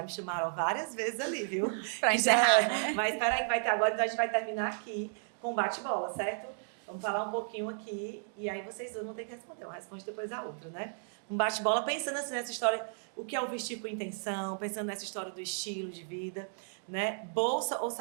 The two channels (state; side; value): silent; left; digital silence